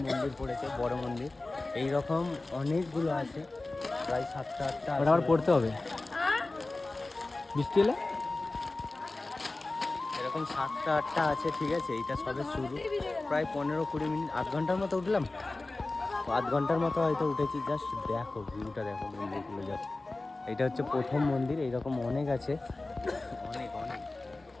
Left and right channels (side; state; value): right; quieter; 3.1 dB